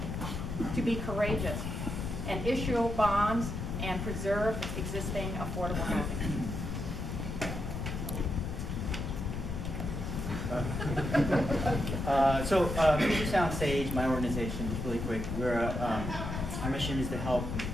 to be courageous and issue bonds and preserve existing affordable housing. Future Sound Sage, my organization, just really quick, our mission is to help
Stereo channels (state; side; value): noise; left; rumble, 5 dB below the sound